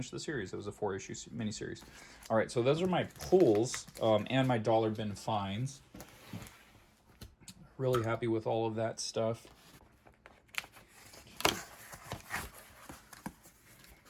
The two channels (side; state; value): both; identical; correlation 1.00